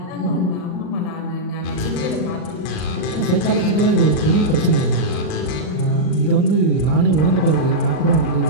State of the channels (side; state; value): right; late; 39 ms